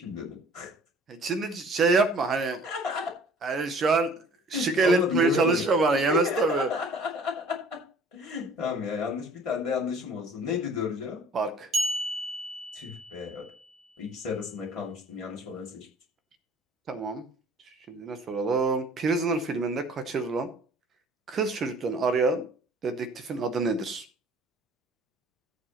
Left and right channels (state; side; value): normal; both; correlation 0.51